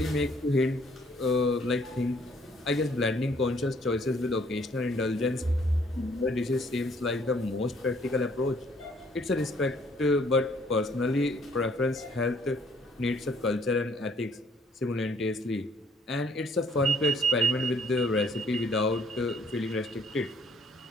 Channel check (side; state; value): both; normal; correlation 0.63